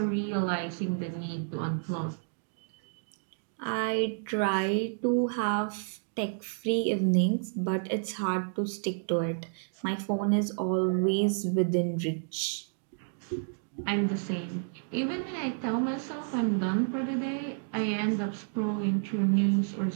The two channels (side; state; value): left; silent; digital silence